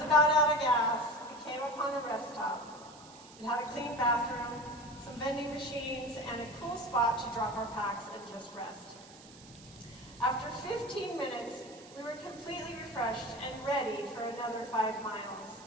about out of gas, we came upon a rest stop. It had a clean bathroom, some vending machines, and a cool spot to drop our packs and just rest. After 15 minutes, we were completely refreshed and ready for another 5 miles.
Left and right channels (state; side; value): noise; right; hiss, 20 dB below the sound